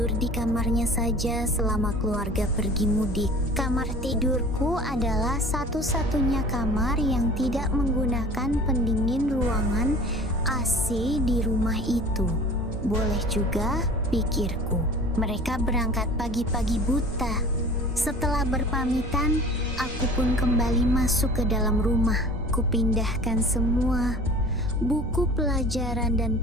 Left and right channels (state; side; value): normal; both; correlation 0.43